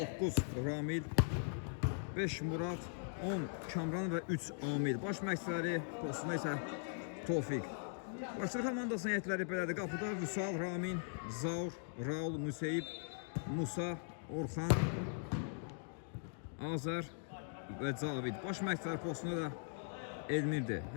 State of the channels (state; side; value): silent; right; digital silence